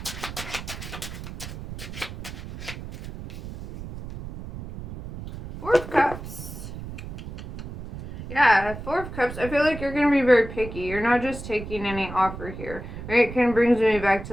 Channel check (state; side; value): noise; right; rumble, 10 dB below the sound